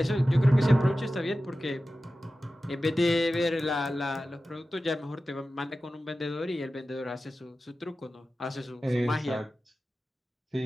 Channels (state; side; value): normal; both; correlation 0.94